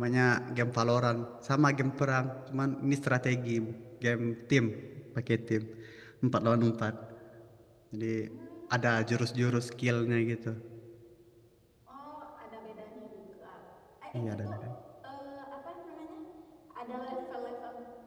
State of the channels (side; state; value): both; identical; correlation 1.00